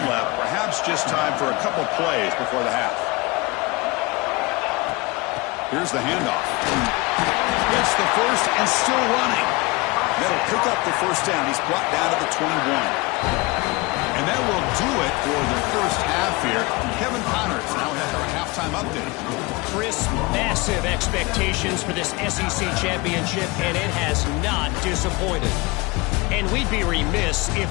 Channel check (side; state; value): right; quieter; 24.5 dB